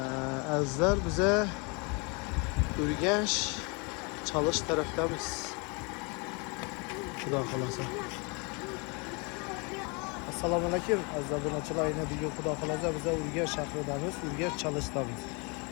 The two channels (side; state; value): right; quieter; 31.3 dB